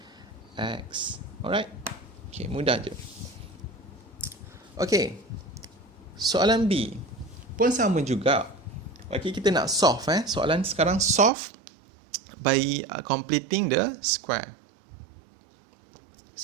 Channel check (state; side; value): drops out; left; at 11.3 s